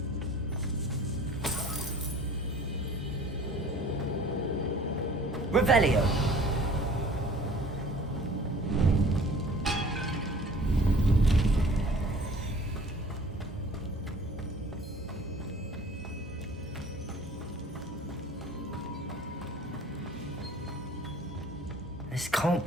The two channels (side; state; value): both; normal; correlation 0.49